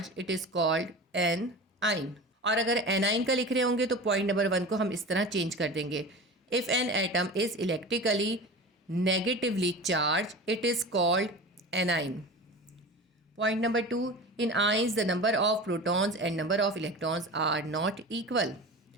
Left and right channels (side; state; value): both; normal; correlation 0.33